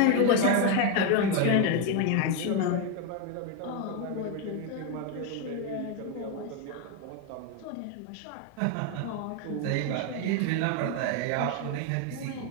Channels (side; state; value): both; different; correlation 0.01